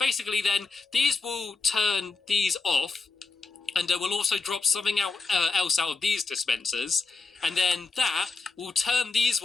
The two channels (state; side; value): quieter; right; 4.1 dB